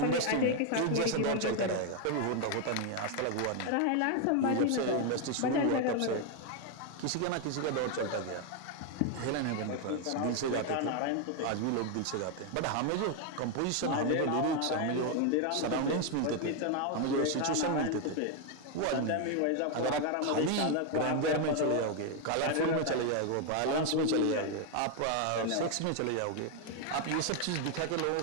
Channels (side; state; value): both; different; correlation 0.01